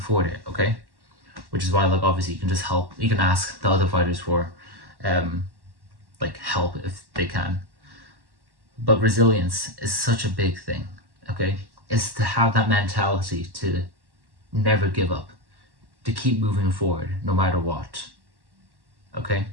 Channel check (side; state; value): left; late; 1.1 ms